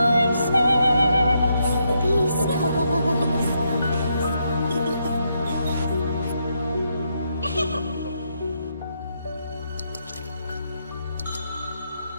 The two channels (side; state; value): both; inverted; correlation -0.79